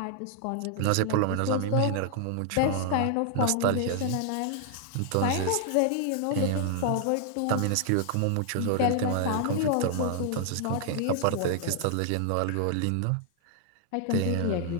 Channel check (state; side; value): different; both; correlation 0.00